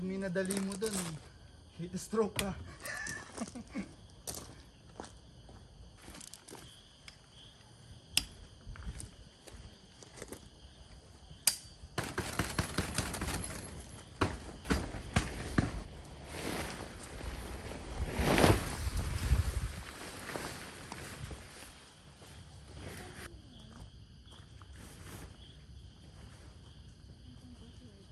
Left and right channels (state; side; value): identical; both; correlation 1.00